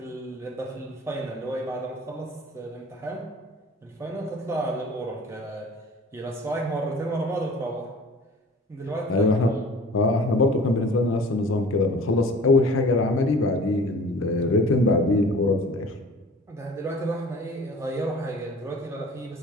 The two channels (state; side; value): normal; both; correlation 0.45